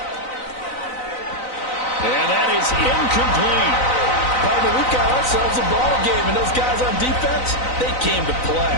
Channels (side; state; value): right; late; 3.9 ms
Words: And that is incomplete. Partner, we've got ourselves a ball game, and those guys on defense, they came to play.